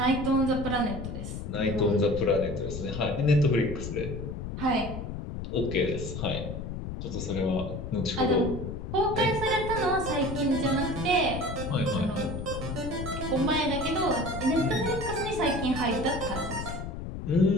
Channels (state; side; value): noise; left; rumble, 6 dB below the sound